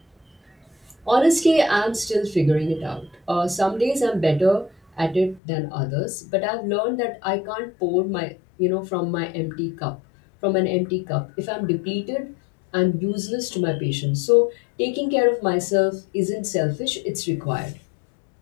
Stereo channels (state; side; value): drops out; right; at 5.4 s